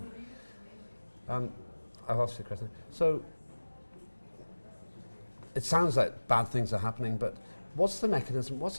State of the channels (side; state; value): both; inverted; correlation -1.00